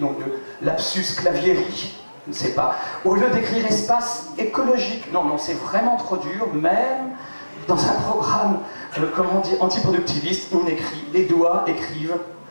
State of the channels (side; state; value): both; inverted; correlation -1.00